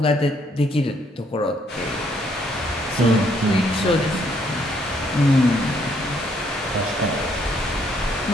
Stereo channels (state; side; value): normal; both; correlation 0.69